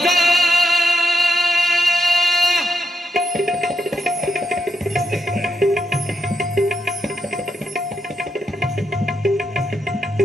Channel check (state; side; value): normal; both; correlation 0.82